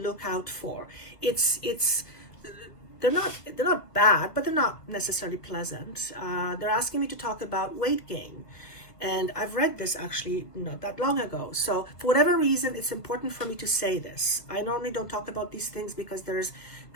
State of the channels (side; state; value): right; late; 1.3 ms